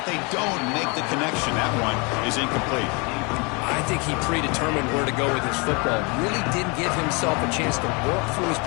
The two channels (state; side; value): quieter; right; 30.2 dB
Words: they don't make the connection. That one is incomplete. I think he predetermined where to go with his football. Really didn't give himself a chance to work through his